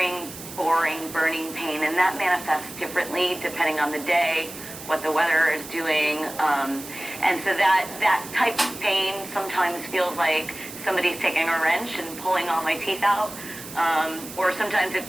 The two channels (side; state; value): right; noise; hiss, 13 dB below the sound